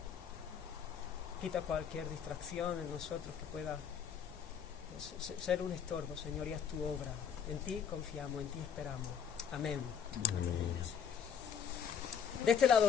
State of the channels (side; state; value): right; quieter; 7.5 dB